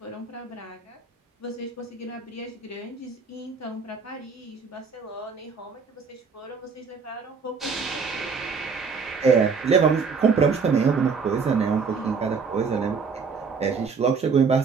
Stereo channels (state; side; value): quieter; left; 5.2 dB